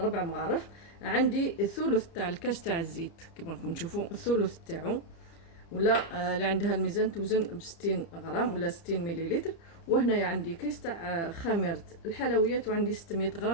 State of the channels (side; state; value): right; late; 30 ms